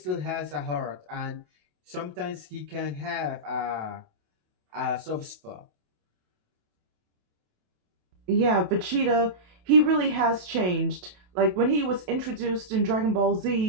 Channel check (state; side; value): late; left; 27 ms